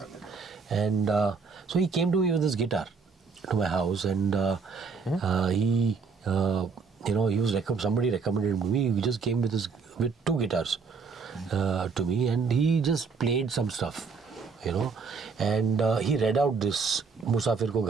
And so he came to me with his guitar to my house, and he, you know, he was somebody recommended me. He just came with two guitars to me, and he just played some stuff, you know, and he read out this Musafir ko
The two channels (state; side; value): quieter; left; 5.0 dB